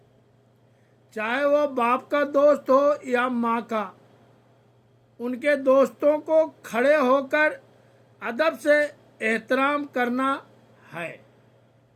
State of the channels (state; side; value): identical; both; correlation 1.00